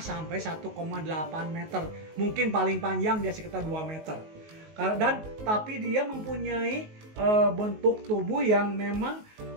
sampai 1,8 meter. Mungkin paling panjang dia sekitar 2 meter. Dan tapi dia mempunyai bentuk tubuh yang memang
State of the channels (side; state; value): left; late; 19 ms